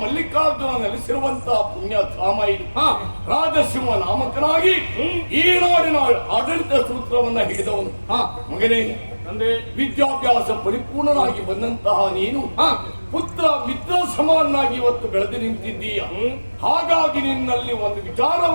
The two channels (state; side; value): inverted; both; correlation -1.00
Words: ಮಲ್ಲಿಕಾರ್ಜುನ ನೆಲೆಸಿರುವಂತಹ ಪುಣ್ಯಧಾಮ ಇದು. ರಾಜಸಿಂಹ ನಾಮಕನಾಗಿ ಈ ನಾಡಿನ ಆಡಳಿತ ಸೂತ್ರವನ್ನ ಹಿಡಿದವನು. ಮಗನೇ, ವಿದ್ಯಾಭ್ಯಾಸ ಪರಿಪೂರ್ಣನಾಗಿ ಬಂದಂತಹ ನೀನು ಪುತ್ರ ಮಿತ್ರ ಸಮಾನಾಗಿ ಇವತ್ತು ಬೆಳೆದು ನಿಂತಿದ್ದೀಯ. ಹಾಗಾಗಿ ನಿನ್ನಲ್ಲಿ ಒಂದು